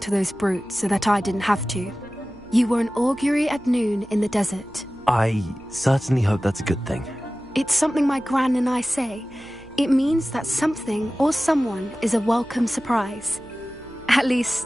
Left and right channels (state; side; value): noise; right; hum, 24 dB below the sound